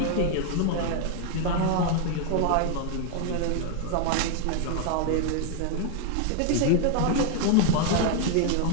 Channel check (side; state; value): both; different; correlation 0.00